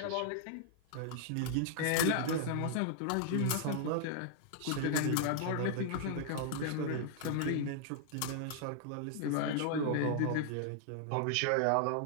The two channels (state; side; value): different; both; correlation -0.01